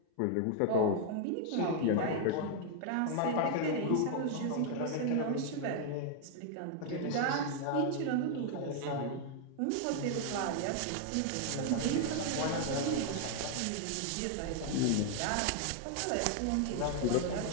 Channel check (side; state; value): both; different; correlation 0.00